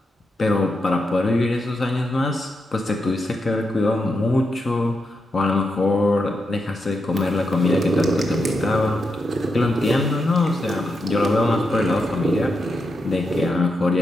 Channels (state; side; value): normal; both; correlation 0.85